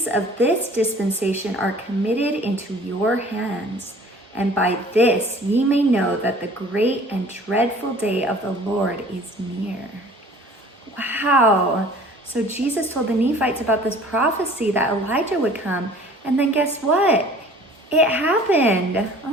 of this dispensation are committed into your hands, and by this ye may know that the great and dreadful day of the Lord is near." Wow. So Jesus told the Nephites about this prophecy that Elijah would come, and then guess what? It happened.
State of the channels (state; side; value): normal; both; correlation 0.49